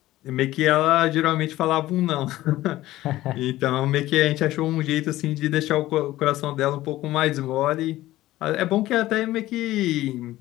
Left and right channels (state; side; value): quieter; right; 16.0 dB